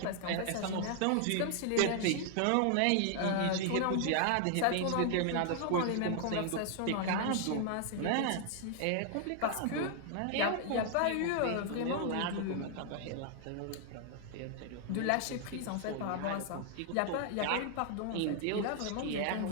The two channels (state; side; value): different; both; correlation 0.00